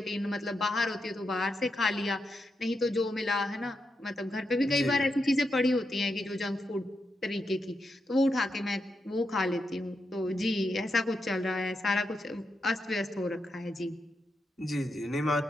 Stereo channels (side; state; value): both; normal; correlation 0.85